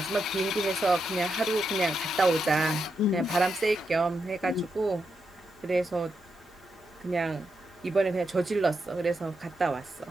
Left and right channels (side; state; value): both; normal; correlation 0.84